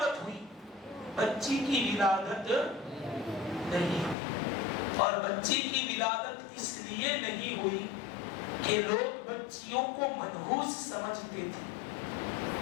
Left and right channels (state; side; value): drops out; right; at 4.2 s